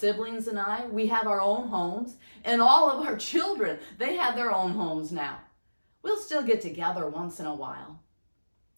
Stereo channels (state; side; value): inverted; both; correlation -1.00